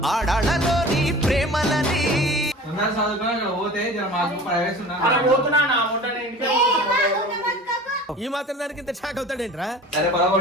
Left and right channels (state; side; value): normal; both; correlation 0.40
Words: ఆడాళ్ళలోని ప్రేమలని ఈ మాత్రం దానికి ఇంత షాక్ అవుతాడేంట్రా?